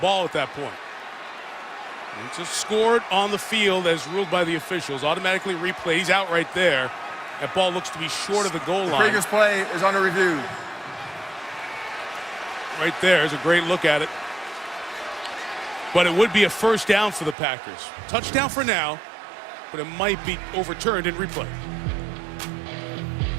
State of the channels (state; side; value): drops out; left; at 17.4 s